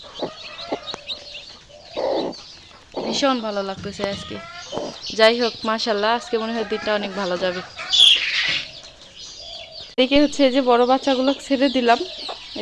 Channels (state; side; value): identical; both; correlation 1.00